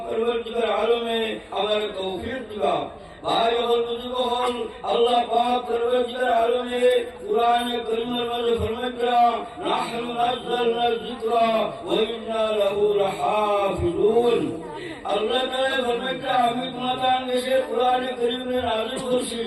পরবর্তীকার আলমে আমার তৌফিক দিবা। ভাই হল বুজুর্গ হল আল্লাহ পাক পরবর্তীকার আলমে কুরআনে কারীমের মধ্যে ফরমাইয়া নাহনু নাযালনা যিকরা ওয়া ইন্না লাহু লাহাফিজুন। আল্লাহ তাআলা ফরমাইয়া আমি তোমাদের দেশে কুরআনে কারীমে নাযিল করছি,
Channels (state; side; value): identical; both; correlation 1.00